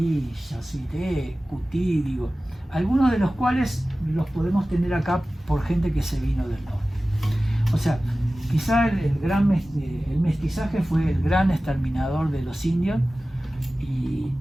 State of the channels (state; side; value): normal; both; correlation 0.96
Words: Yasuité, Cutí, digo. Algunos de los cuales los podemos tener acá por gente que se vino del norte. O sea, quizá el mestizaje fue el gran exterminador de los indios, y